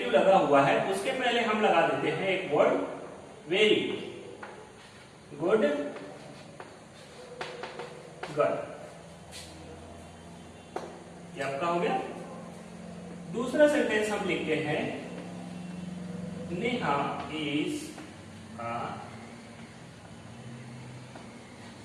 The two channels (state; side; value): identical; both; correlation 1.00